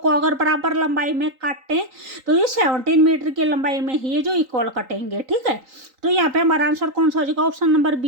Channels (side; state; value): left; late; 3.8 ms